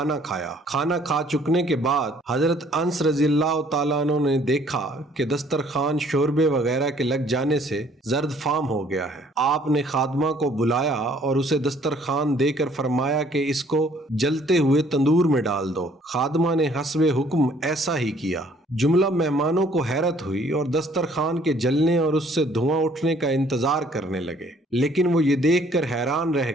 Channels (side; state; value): both; normal; correlation 0.60